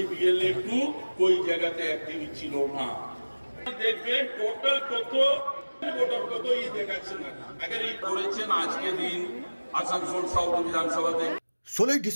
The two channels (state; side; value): inverted; both; correlation -1.00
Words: बीएलए 2 कोई জায়গাতে অ্যাক্টিভ ছিল না। দেখবেন টোটাল কত ভোটার কত এই দেখাচ্ছে না। আগে এই করেছেন আজকে দিন আসানসোল সাউথ বিধানসভাতে 16